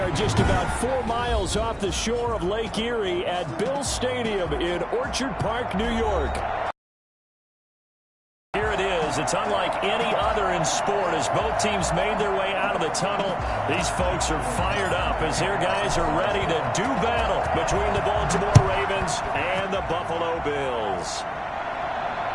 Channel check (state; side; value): identical; both; correlation 1.00